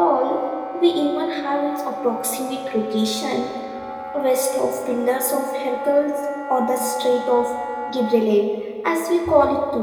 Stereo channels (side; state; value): both; identical; correlation 1.00